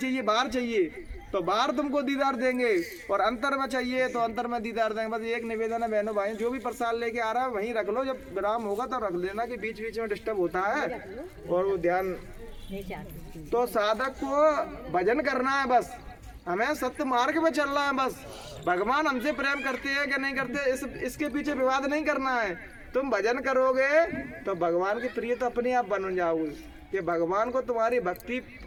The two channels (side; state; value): both; identical; correlation 1.00